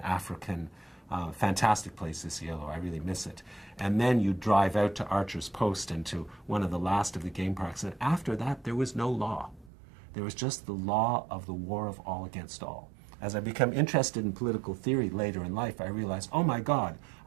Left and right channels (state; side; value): drops out; left; at 9.7 s